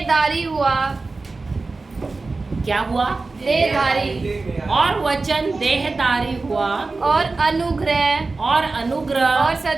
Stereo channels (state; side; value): quieter; left; 3.7 dB